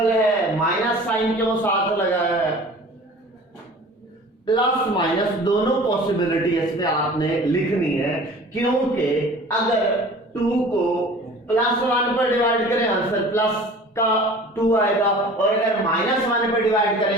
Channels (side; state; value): both; normal; correlation 0.43